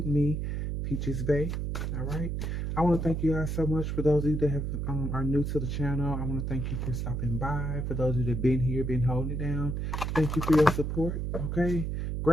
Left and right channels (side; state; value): right; noise; hum, 2 dB below the sound